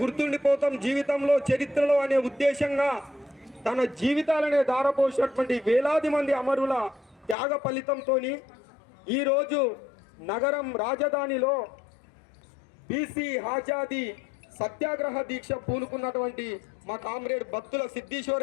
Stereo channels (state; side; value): drops out; right; at 7.4 s